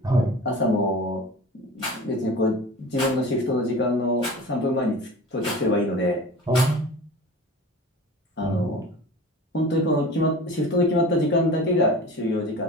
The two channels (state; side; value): normal; both; correlation 0.37